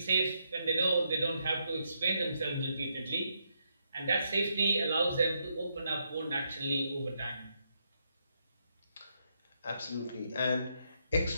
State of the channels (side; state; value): both; inverted; correlation -0.79